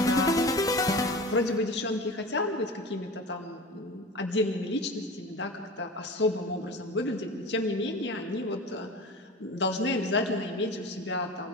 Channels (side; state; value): both; normal; correlation 0.34